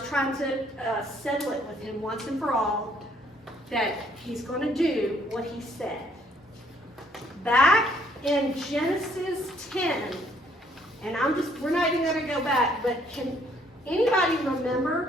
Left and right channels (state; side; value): normal; both; correlation 0.65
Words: trying to settle it with him once and for all, that he's going to do what he said. Back in Genesis 10, and we're not even going to go back, but can anybody